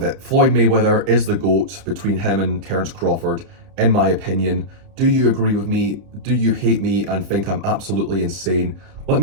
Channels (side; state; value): left; late; 30 ms